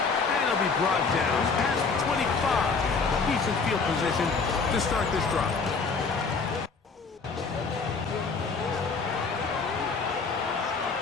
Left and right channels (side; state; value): right; quieter; 4.7 dB